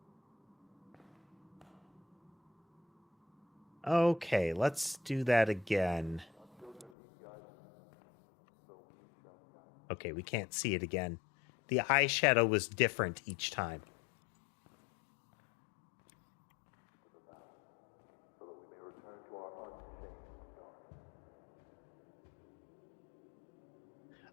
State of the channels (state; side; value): drops out; right; at 6.9 s